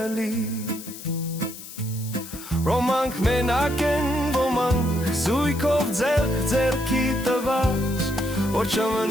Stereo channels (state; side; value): noise; left; hiss, 13 dB below the sound